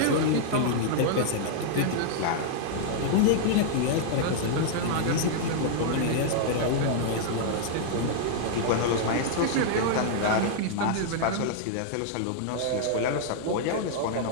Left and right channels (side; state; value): both; different; correlation -0.01